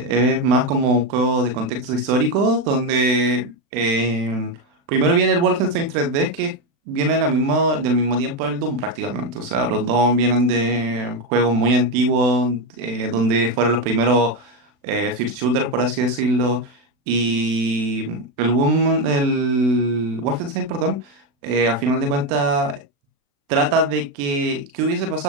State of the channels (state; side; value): late; left; 36 ms